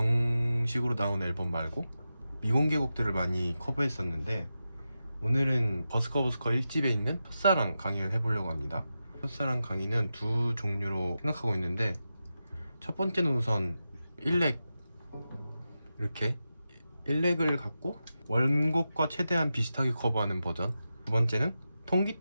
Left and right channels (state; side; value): inverted; both; correlation -0.91